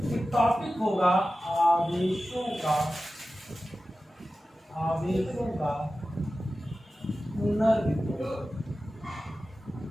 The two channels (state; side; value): normal; both; correlation 0.94